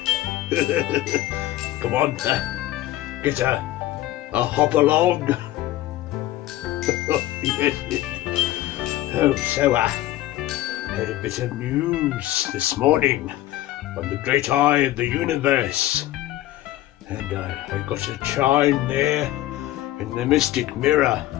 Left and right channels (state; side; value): quieter; right; 15.2 dB